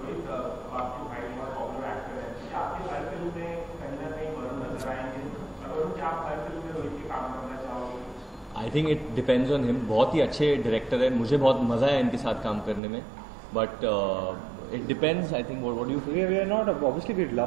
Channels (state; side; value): drops out; left; at 12.8 s